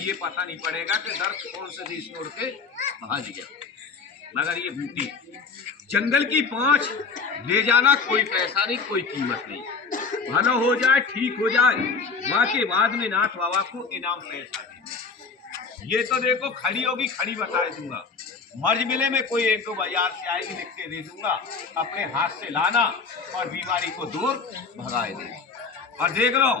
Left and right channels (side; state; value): right; quieter; 4.9 dB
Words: पता नहीं पड़ेगा कि दर्द कौन से देश छोड़ के भाग गया। मगर ये बूटी जंगल की 5 ले जाना, कोई पैसा नहीं, कोई कीमत नहीं, भला हो जाए, ठीक हो जाए, वहां के बाद में नाथ बाबा को इनाम पैसा देना। ये तो देखो खड़ी होगी, खड़ी बता दूंगा, मर्ज मिले में कोई 1-2 बाजार से आएगी, लिख के दे दूंगा, अपने हाथ से लाना और बीमारी को दूर भगाए दे। और देख लो